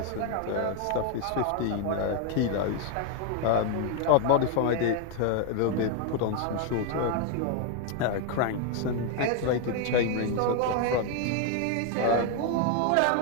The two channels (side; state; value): both; different; correlation 0.01